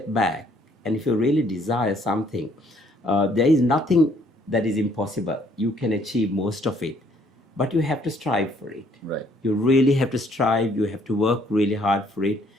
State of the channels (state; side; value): normal; both; correlation 0.64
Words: back. And if you really desire something, there is nothing that is impossible. You can achieve most of it, but you have to strive for it. Right. You really have to strive. You have to work really hard for it,